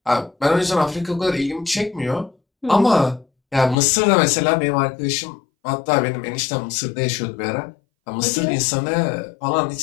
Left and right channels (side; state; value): right; drops out; at 3.8 s